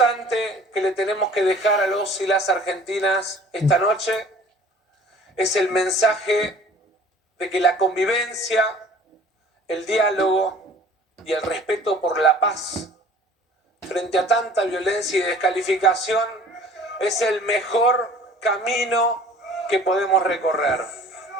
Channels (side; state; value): both; normal; correlation 0.49